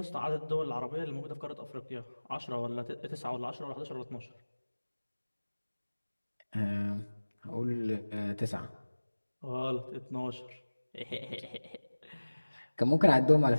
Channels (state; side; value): inverted; both; correlation -1.00